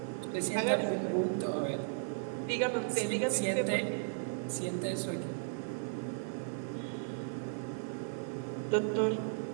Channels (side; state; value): left; silent; digital silence